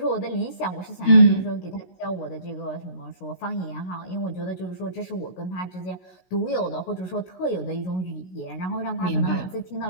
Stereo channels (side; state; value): right; late; 16 ms